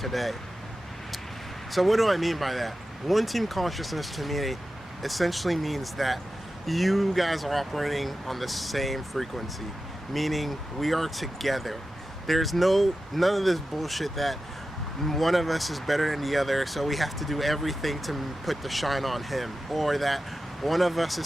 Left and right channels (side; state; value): both; normal; correlation 0.93